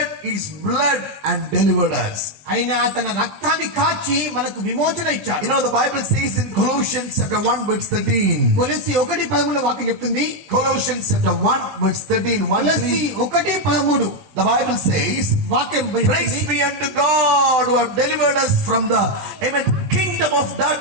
his blood and delivered us. ఆయన తన రక్తాన్ని కాచి మనకు విమోచన ఇచ్చాడు. The Bible says in Colossians chapter 1 verse 13. కొలస్సీ 1:13 వాక్యం చెప్తుంది. Colossians chapter 1 verse 13. కొలస్సీ 1:13. The Bible says, వాక్యం praise be unto God who have delivered us from the kingdom of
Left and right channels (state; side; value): late; left; 20 ms